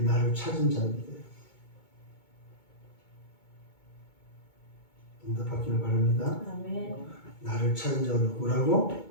나를 찾은 자입니다. 응답받기를 바랍니다. 아멘. 나를 찾은 자가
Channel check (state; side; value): late; right; 2.2 ms